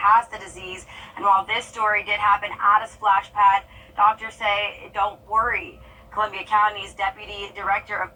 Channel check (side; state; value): both; identical; correlation 1.00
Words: the disease. And while this story did happen at a splash pad, doctors say don't worry. Columbia County's Deputy Director of